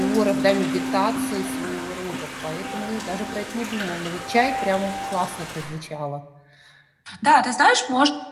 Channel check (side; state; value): both; identical; correlation 1.00